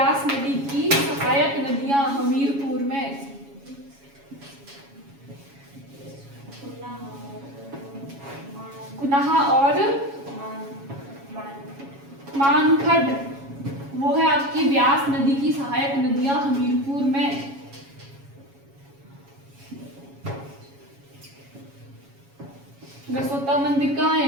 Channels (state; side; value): late; left; 7.2 ms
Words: नदी की सहायक नदियां हमीरपुर में कुनाहा और मानखड, वो है आपकी व्यास नदी की सहायक नदियां हमीरपुर में। गसोता मंदिर कहाँ